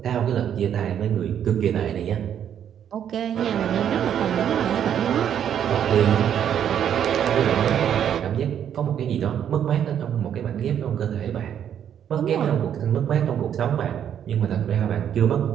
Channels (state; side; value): quieter; left; 9.3 dB